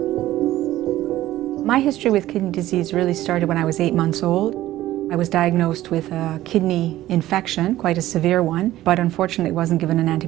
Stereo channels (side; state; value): left; quieter; 14.8 dB